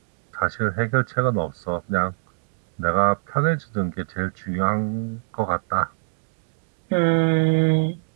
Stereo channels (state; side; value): silent; left; digital silence